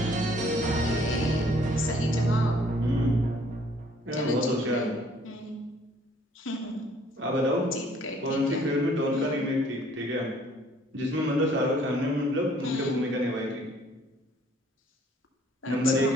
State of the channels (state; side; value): normal; both; correlation 0.60